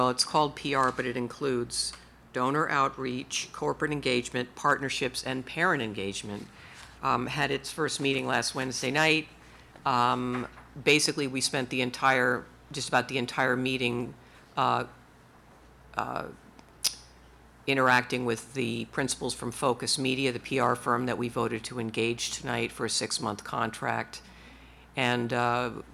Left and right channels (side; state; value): both; identical; correlation 1.00